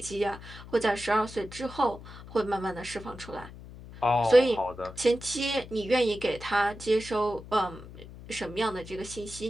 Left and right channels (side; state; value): left; noise; hum, 16 dB below the sound